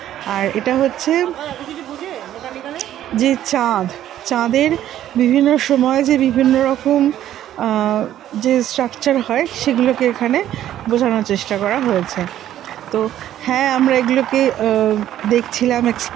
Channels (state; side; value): quieter; left; 12.0 dB